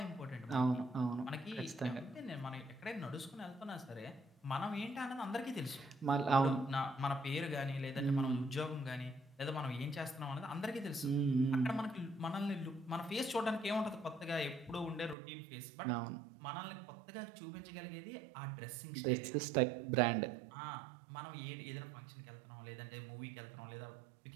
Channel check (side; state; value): left; drops out; at 15.2 s